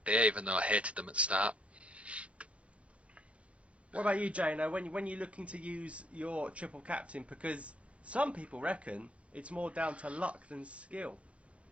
even though I hated them at the start. What about you, Jano? When you're looking to use your triple captain, because some people reckon it's more down to luck than skill.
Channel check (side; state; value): left; late; 0.062 ms